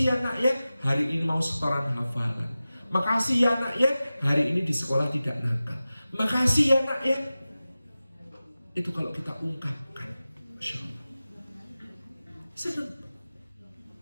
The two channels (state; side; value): inverted; both; correlation -0.95